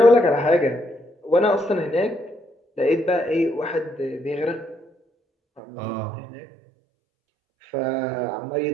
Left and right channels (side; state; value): left; drops out; at 5.6 s